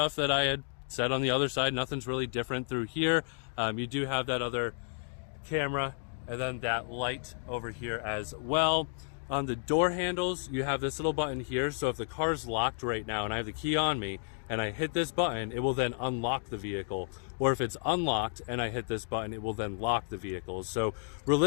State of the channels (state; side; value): silent; right; digital silence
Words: that I had said on the other side. Nothing's really different through here. You do have that other camera and then that light over here as well. On the door handles, you have this little button here. So if the car's locked right now and I have the key on me and I hit this button, it will then unlock the vehicle. Or if it's unlocked and I hit this button, it will then lock the vehicle. So